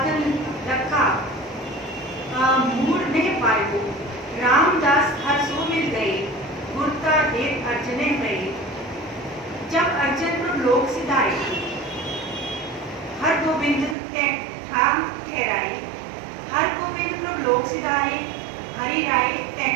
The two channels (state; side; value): drops out; left; at 14.0 s